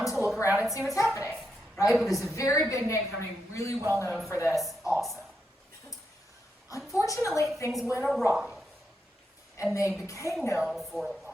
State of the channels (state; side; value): normal; both; correlation 0.83